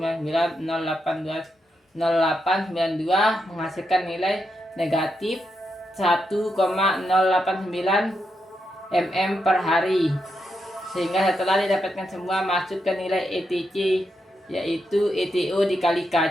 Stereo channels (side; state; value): both; normal; correlation 0.83